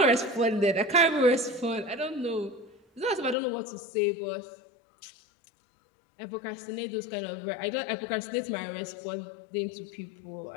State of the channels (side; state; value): right; drops out; at 3.4 s